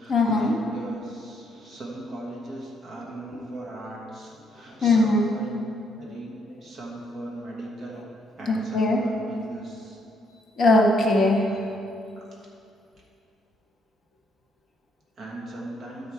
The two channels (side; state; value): both; normal; correlation 0.72